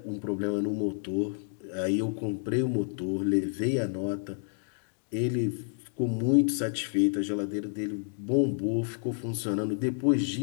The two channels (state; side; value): silent; right; digital silence